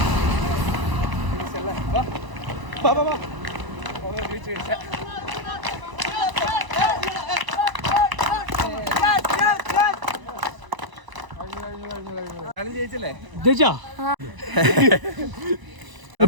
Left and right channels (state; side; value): late; left; 1.0 ms